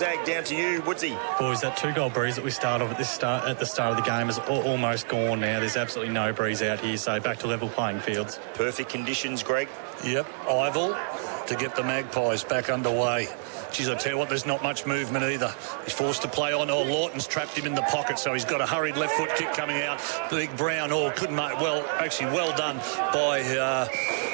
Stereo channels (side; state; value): left; silent; digital silence